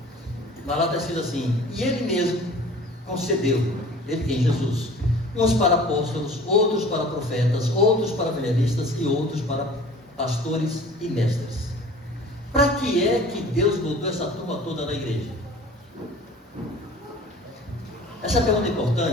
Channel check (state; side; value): normal; both; correlation 0.45